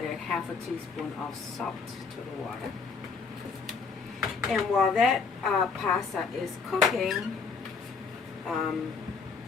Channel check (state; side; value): quieter; right; 5.2 dB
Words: half a teaspoon of salt to the water. And while that pasta is cooking, follow